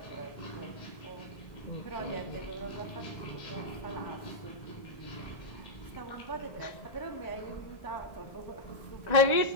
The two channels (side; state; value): right; late; 1.9 ms